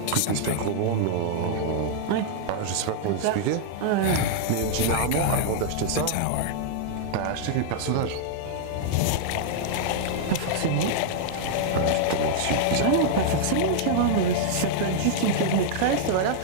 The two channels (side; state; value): both; different; correlation -0.01